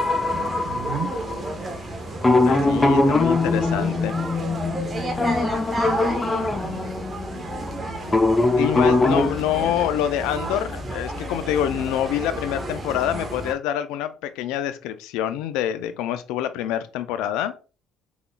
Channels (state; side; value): quieter; right; 3.7 dB